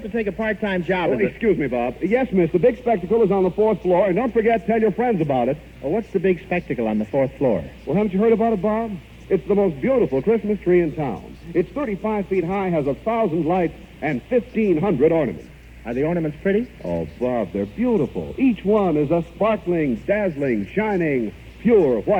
to take a part-time job? Excuse me, Bob. Yes, miss, the big spectacle is on the 4th floor, and don't forget, tell your friends about it. Well, what's the big spectacle on the 4th floor? Well, haven't you heard about it, Bob? It's the most beautiful Christmas tree in town. It's 35 feet high, has 1,000 lights, and 1,500 ornaments. Are the ornaments pretty? Oh, Bob, they're beautiful. Each one is a sparkling, dazzling, shining, pure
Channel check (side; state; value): both; identical; correlation 1.00